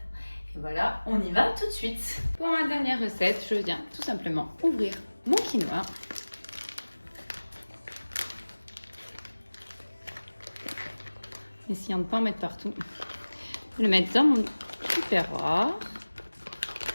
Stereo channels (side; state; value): both; inverted; correlation -1.00